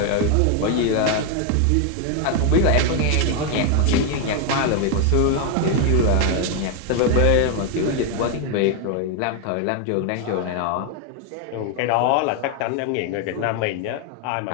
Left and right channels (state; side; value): different; both; correlation 0.01